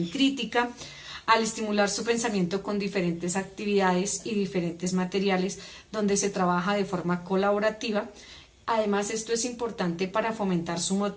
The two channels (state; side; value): identical; both; correlation 1.00